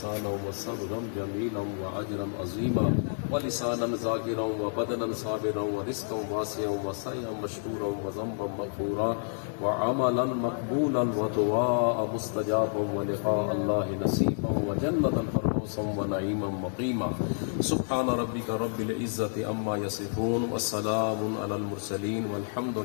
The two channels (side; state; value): right; silent; digital silence